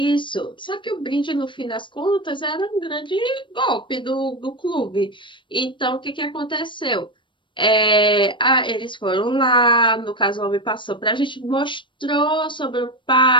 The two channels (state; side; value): late; right; 0.24 ms